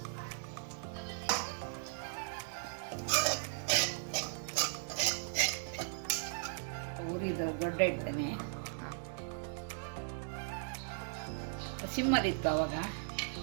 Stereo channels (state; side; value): silent; left; digital silence